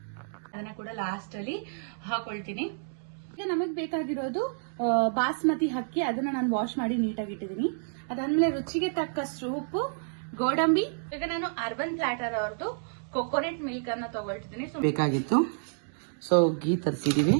ಅದನ್ನ ಕೂಡ ಲಾಸ್ಟ್ ಅಲ್ಲಿ ಹಾಕೊಳ್ತೀನಿ. ಈಗ ನಮಗ್ ಬೇಕಾಗಿರೋದು ಬಾಸ್ಮತಿ ಅಕ್ಕಿ, ಅದನ್ನ ನಾನು ವಾಶ್ ಮಾಡಿ ನೀಟಾಗಿ ಇಟ್ಟಿದ್ದೀನಿ. ಅದಾದ್ಮೇಲೆ ರುಚಿಗೆ ತಕ್ಕಷ್ಟು ಉಪ್ಪು, ಗೋಡಂಬಿ. ಈಗ ನಾನು ಅರ್ಬನ್ ಪ್ಲಾಟರ್ ಅವ್ರದ್ದು ಕೊಕೊನೆಟ್ ಮಿಲ್ಕ್ ಅನ್ನ ತಗೊಳ್ತಿದ್ದೀನಿ. ಬೇಕಾಗಿತ್ತು, ಸೊ ಗೀ ತರಿಸಿದೀವಿ.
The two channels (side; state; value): left; silent; digital silence